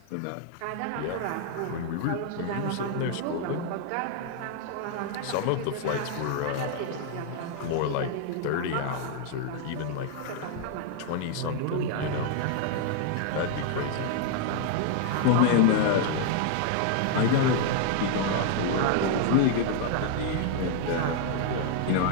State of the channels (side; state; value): both; different; correlation 0.00